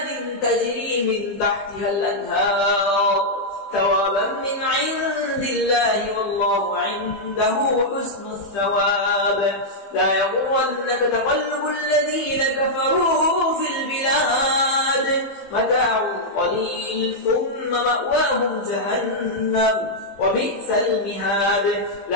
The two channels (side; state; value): right; late; 15 ms